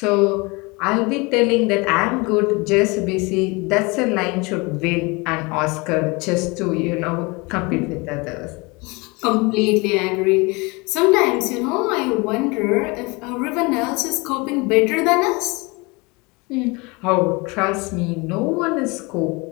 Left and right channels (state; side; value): quieter; right; 26.6 dB